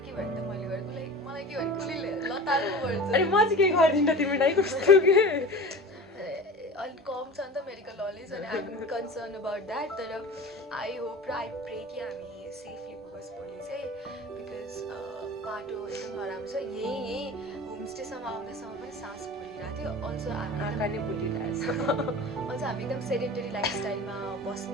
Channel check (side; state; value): both; normal; correlation 0.35